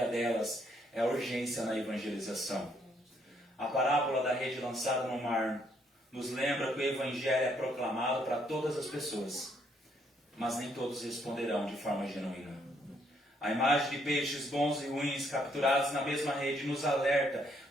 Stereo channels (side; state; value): both; normal; correlation 0.70